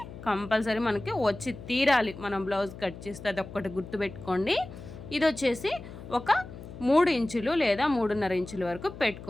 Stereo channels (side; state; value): left; noise; hum, 13 dB below the sound